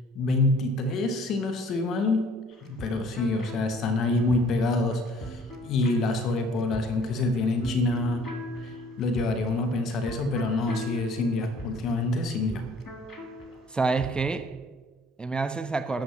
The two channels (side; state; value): both; normal; correlation 0.56